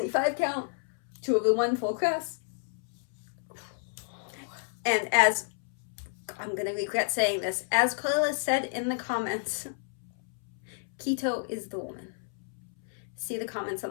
count, 2/1 full crest. And as, I'm going to regret saying this, as Karla said in the comments, Keto is the woman. See the comments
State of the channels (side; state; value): right; silent; 57 dB below the other